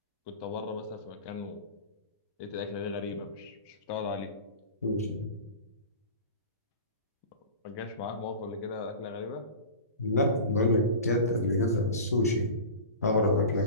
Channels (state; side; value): inverted; both; correlation -0.33